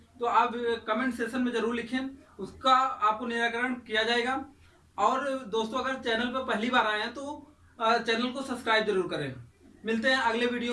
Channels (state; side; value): identical; both; correlation 1.00